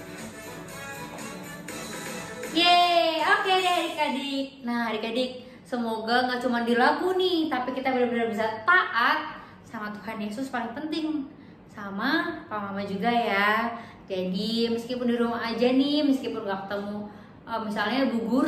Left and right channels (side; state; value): both; identical; correlation 1.00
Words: Yeay, oke deh adik-adik. Nah adik-adik, semoga nggak cuma di lagu nih, tapi kita benar-benar bisa taat sama Tuhan Yesus, paling penting sama Papa Mama juga ya. Jadi meskipun di rumah aja nih, meskipun nggak ketemu misalnya Bu